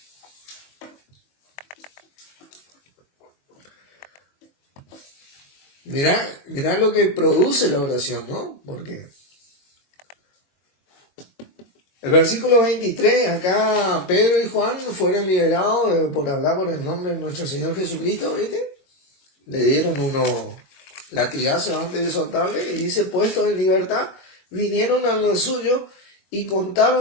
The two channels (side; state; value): right; late; 22 ms